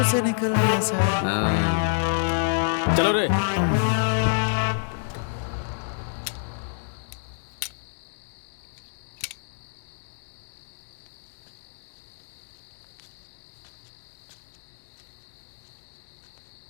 से निकल गया सर। चलो रे।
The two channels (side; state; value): right; silent; 56 dB below the other